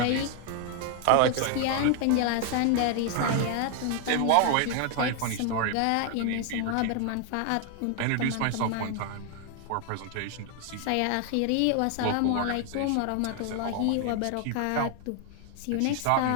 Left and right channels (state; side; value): different; both; correlation 0.00